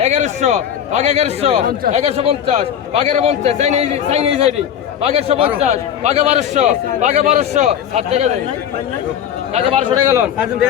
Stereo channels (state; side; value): quieter; right; 9.3 dB